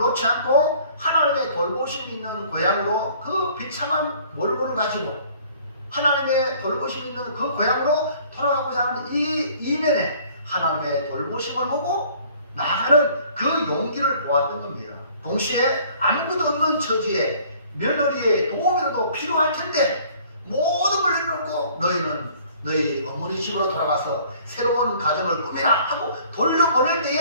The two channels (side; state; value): both; inverted; correlation -0.55